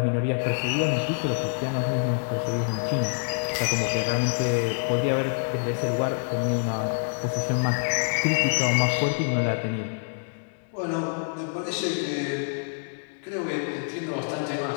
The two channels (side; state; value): right; silent; 61 dB below the other